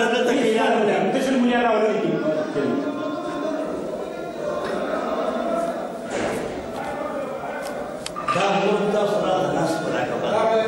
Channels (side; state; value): both; identical; correlation 1.00